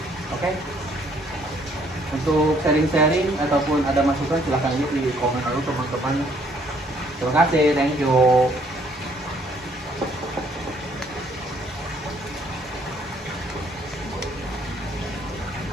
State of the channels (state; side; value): normal; both; correlation 0.65